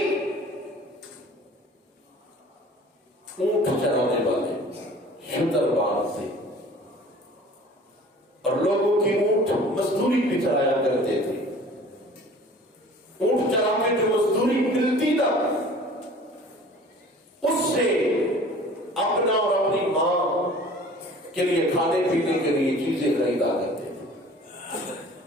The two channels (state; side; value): normal; both; correlation 0.46